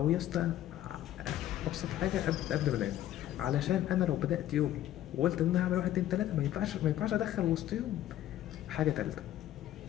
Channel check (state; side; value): quieter; right; 12.7 dB